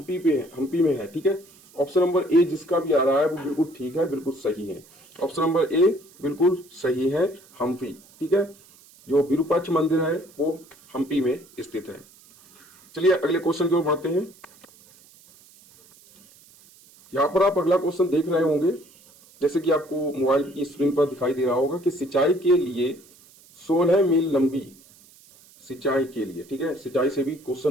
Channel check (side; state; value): right; noise; hiss, 26 dB below the sound